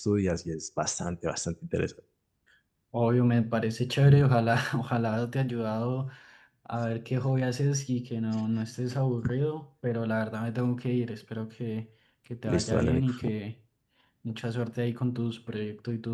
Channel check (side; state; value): both; identical; correlation 1.00